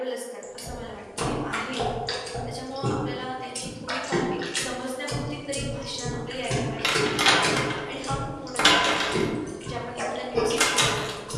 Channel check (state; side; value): identical; both; correlation 1.00